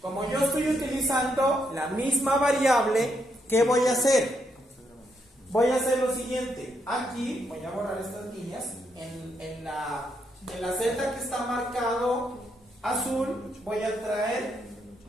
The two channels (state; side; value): normal; both; correlation 0.78